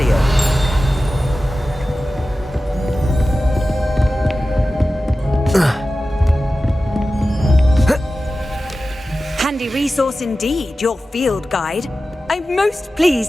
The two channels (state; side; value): normal; both; correlation 0.94